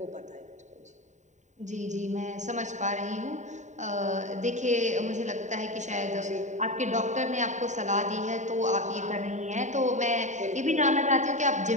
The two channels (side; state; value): left; late; 0.34 ms